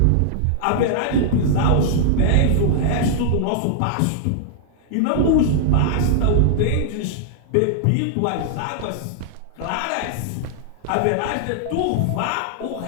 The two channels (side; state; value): both; different; correlation -0.01